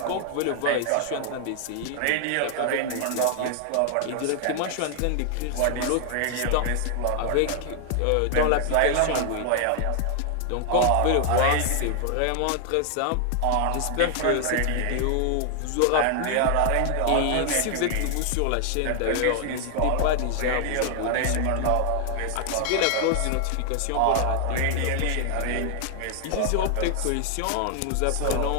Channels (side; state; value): both; different; correlation 0.00